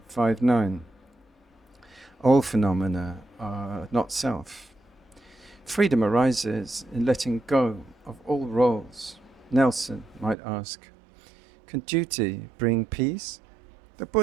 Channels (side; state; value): left; drops out; at 10.4 s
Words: All phenomena are not self. Freedom arises in letting go of all roles. Nelson might ask, can duty bring peace? The